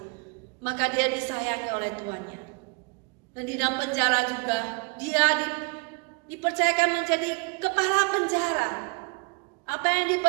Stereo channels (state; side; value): quieter; left; 33.0 dB